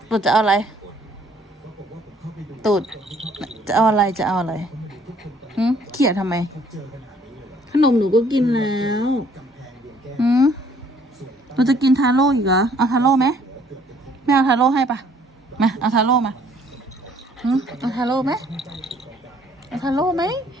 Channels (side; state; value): both; normal; correlation 0.61